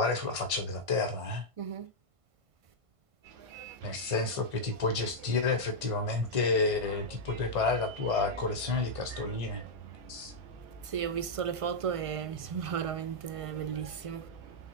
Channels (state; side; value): late; left; 1.5 ms